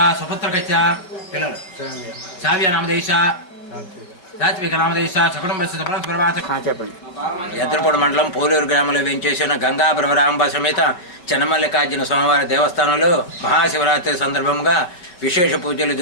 సుపుత్రకచ్చ పిల్లలు సావ్య నామదేశ సాత్విక నామదేశ చెప్పండి. ఎద్దరపూడి మండలం పోలూరు గ్రామంలో వేంచేసిన గంగా భ్రమరాంబ సమేత చెన్నమల్లికార్జున స్వామివారి దేవస్థానంలో మహాశివరాత్రి సందర్భంగా విశేష పూజలు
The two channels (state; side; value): late; right; 5.4 ms